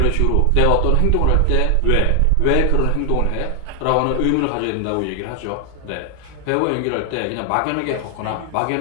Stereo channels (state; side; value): different; both; correlation 0.00